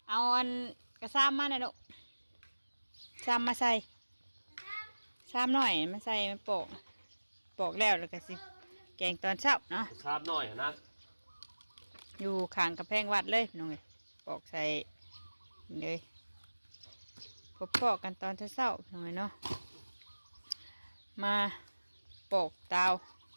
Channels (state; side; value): inverted; both; correlation -1.00